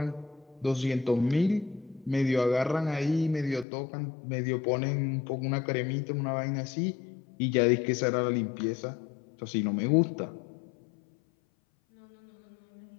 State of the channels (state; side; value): drops out; right; at 3.7 s